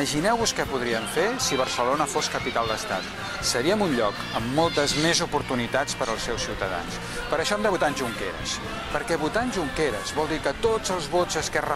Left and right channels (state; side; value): identical; both; correlation 1.00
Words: què podríem fer si Barcelona fos capital d'estat. Seríem un lloc amb moltes més oportunitats per als seus ciutadans. Per això hem de votar en Junqueras. Perquè votar en Junqueras vol dir que tots els vots d'Esquerra